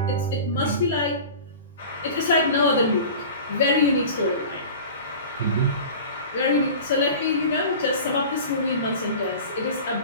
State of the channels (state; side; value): inverted; both; correlation -0.37